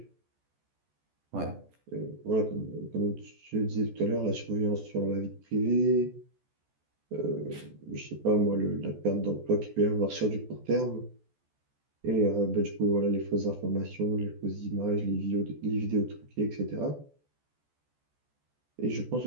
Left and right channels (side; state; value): left; late; 14 ms